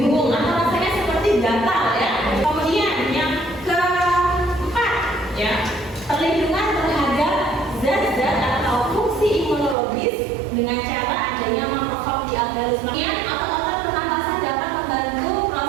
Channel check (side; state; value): left; drops out; at 9.8 s